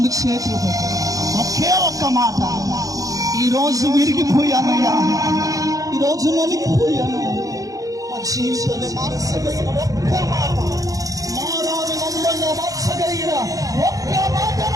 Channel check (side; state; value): left; late; 0.17 ms